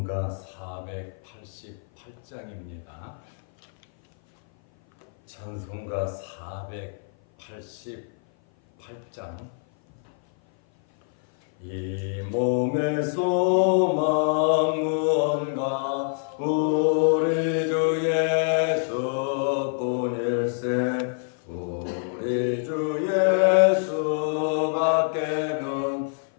488장입니다. 찬송가 488장. 이 몸의 소망 무언가 우리 주 예수뿐일세. 우리 주 예수밖에는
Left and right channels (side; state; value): right; silent; 56 dB below the other